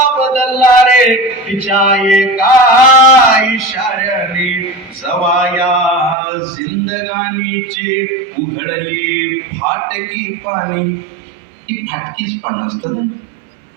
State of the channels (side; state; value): left; drops out; at 6.2 s